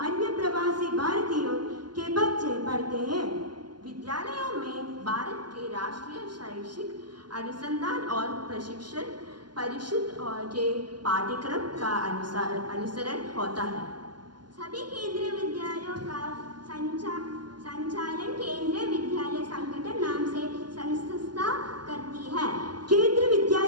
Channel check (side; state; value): left; late; 0.71 ms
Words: अन्य प्रवासी भारतीयों के बच्चे पढ़ते हैं। विद्यालयों में भारत के राष्ट्रीय शैक्षिक अनुसंधान और प्रशिक्षण परिषद के पाठ्यक्रम का अनुसरण होता है। सभी केंद्रीय विद्यालयों का संचालन केंद्रीय विद्यालय संगठन नाम से संस्था करती है। केंद्रीय